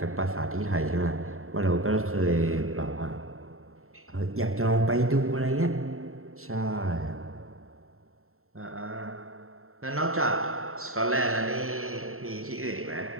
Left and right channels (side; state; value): left; late; 0.62 ms